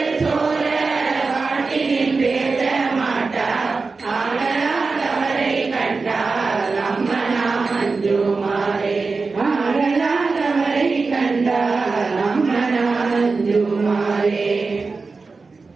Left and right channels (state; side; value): quieter; left; 4.2 dB